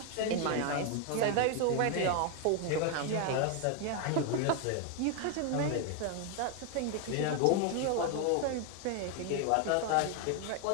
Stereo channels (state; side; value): different; both; correlation 0.01